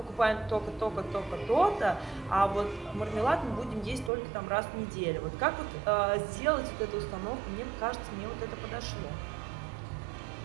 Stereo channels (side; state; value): left; drops out; at 4.1 s